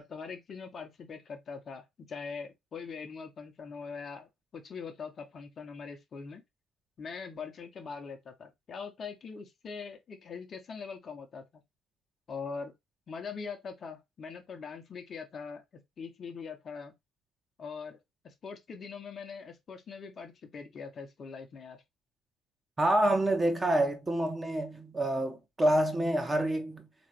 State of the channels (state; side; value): normal; both; correlation 0.86